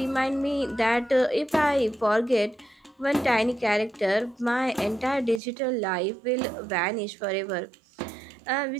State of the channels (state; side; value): drops out; left; at 5.4 s